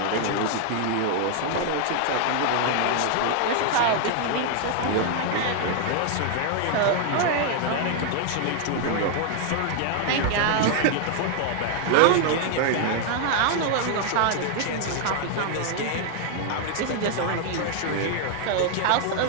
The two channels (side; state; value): both; different; correlation 0.00